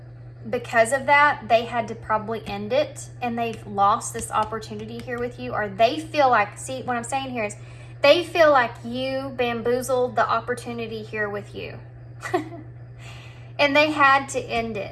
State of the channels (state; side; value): identical; both; correlation 1.00